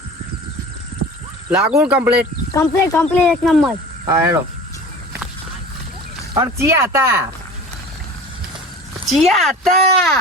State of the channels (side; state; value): both; normal; correlation 0.38